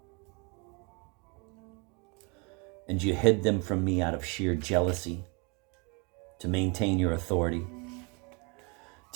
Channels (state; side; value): quieter; left; 31.5 dB